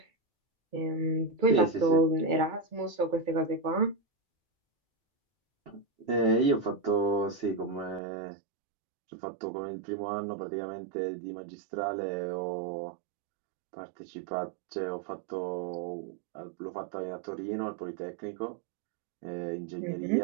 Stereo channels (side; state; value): left; drops out; at 8.0 s